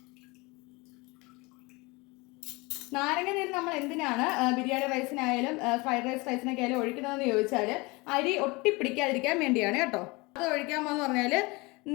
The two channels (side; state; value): right; quieter; 25.0 dB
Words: നാരങ്ങ നീര് നമ്മൾ എന്തിനാണ് ബിരിയാണി റൈസിനായാലും ഫ്രൈഡ് റൈസിനൊക്കെ ആയാലും ഒഴിക്കുന്നതെന്ന് ചോദിച്ചാൽ അരി ഒട്ടിപ്പിടിക്കാതിരിക്കാൻ വേണ്ടിയാണ് കേട്ടോ. അത് ഒഴിക്കാമെന്ന് പറഞ്ഞാൽ